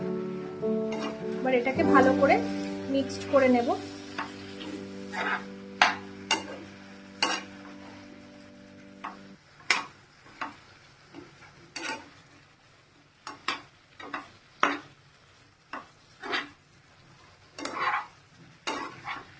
এবার এটাকে ভালো করে মিক্সড করে নেব।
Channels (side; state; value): both; identical; correlation 1.00